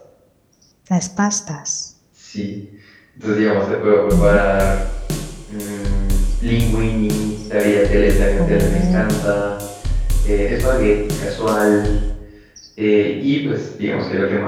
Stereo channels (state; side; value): identical; both; correlation 1.00